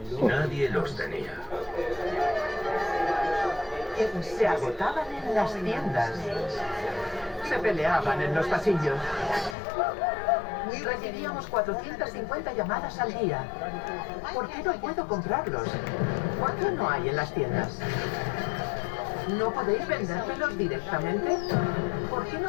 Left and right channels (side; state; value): right; drops out; at 9.6 s